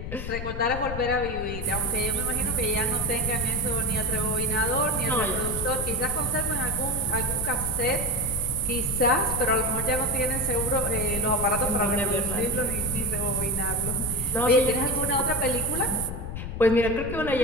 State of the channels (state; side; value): noise; left; rumble, 6 dB below the sound